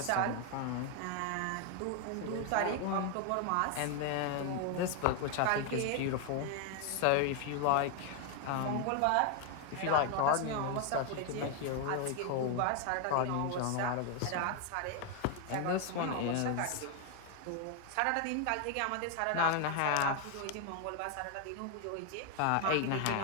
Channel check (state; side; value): different; both; correlation 0.01